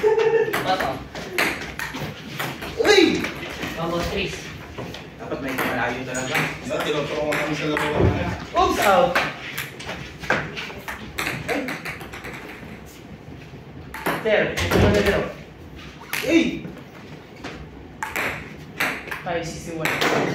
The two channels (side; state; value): both; identical; correlation 1.00